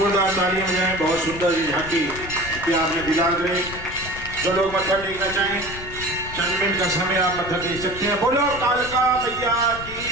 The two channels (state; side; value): noise; left; rumble, 13 dB below the sound